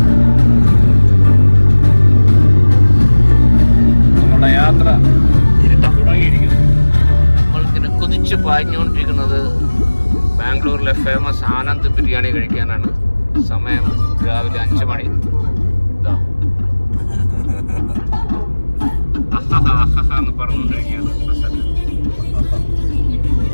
നമ്മുടെ യാത്ര തുടങ്ങിയിരിക്കുന്നു. നമ്മൾക്കിങ്ങനെ കുതിച്ച് പാഞ്ഞുകൊണ്ടിരിക്കുന്നത് ബാംഗ്ലൂരിലെ ഫേമസ് ആനന്ദ് ബിരിയാണി കഴിക്കാനാണ്. സമയം രാവിലെ 5 മണി. ഇതാ എന്ന് പറഞ്ഞുകൊണ്ടിരിക്കുകയാണ്.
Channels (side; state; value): both; inverted; correlation -1.00